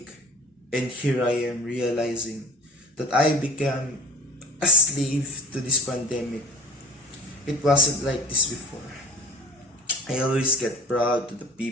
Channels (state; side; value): normal; both; correlation 0.41